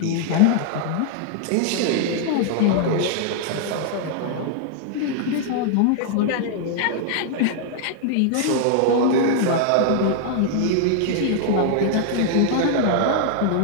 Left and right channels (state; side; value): different; both; correlation 0.00